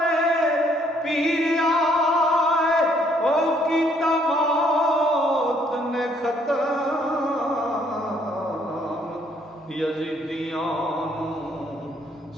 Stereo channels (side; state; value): both; normal; correlation 0.66